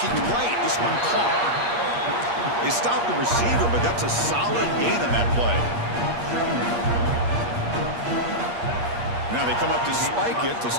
right, this one caught. They stopped the receiver, but that's a solid gain on that play. Now they come up to spike it to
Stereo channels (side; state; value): left; late; 8.5 ms